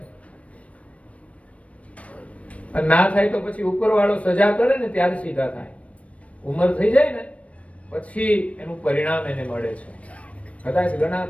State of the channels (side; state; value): right; late; 0.064 ms